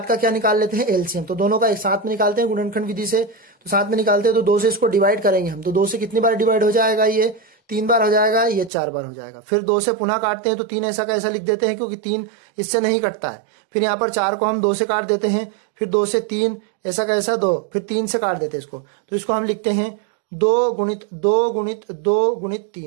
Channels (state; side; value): drops out; left; at 8.7 s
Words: का क्या निकाल लेते हैं LCM। तो दोनों का एक साथ में निकालते हैं गुणनखंड विधि से। तो साथ में निकालते हैं तो 2 से इसको डिवाइड करेंगे हम। तो 2 से कितनी बार डिवाइड हो जाएगा, ये 3 बार हो जाएगा, ये 4 बार हो जाएगा। फिर 2 से पुनः काटते हैं तो 3 ऐसा का ऐसा लिख देते हैं, क्योंकि 3 इससे नहीं कटता है। फिर यहाँ पर 4 को हम 2 से काट देते हैं, फिर 2 से 3 ऐसा का ऐसा 2, फिर 3 से काट देते हैं इसको। तो इसको हम लिखते हैं 2 गुणित 2 गुणित 2 गुणित